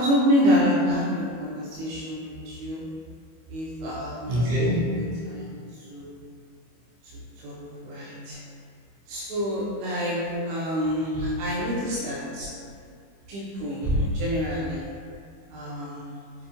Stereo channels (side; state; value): left; late; 25 ms